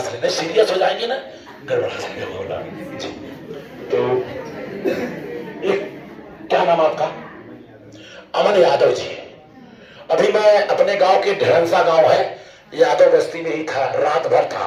लेना, सीरियस हो जाएंगे ना, गड़बड़ा जाएंगे। तो क्या नाम आपका? अमन यादव जी। अभी मैं अपने गांव के ढेरंसा गांव है, यादव बस्ती में ही था, रात भर था।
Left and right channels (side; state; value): both; identical; correlation 1.00